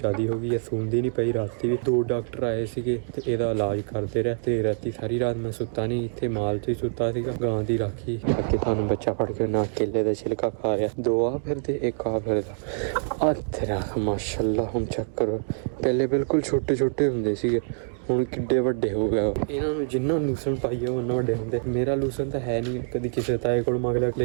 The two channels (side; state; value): left; silent; digital silence